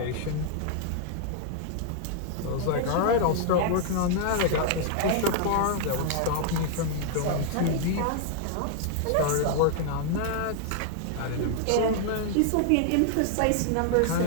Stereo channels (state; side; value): different; both; correlation 0.00